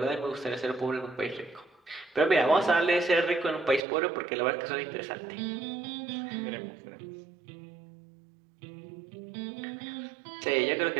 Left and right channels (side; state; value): left; drops out; at 3.8 s